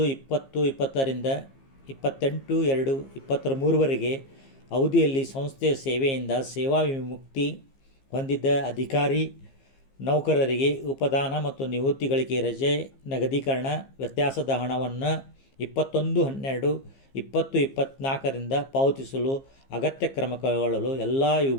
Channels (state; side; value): late; right; 15 ms